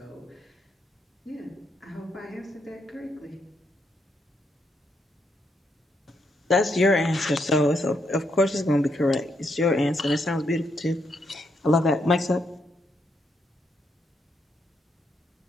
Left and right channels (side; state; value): both; normal; correlation 0.78